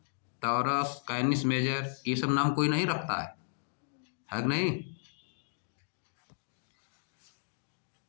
टॉरस, कैनिस मेजर, ये सब नाम कोई नहीं रखता है कि नहीं।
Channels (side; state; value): right; silent; digital silence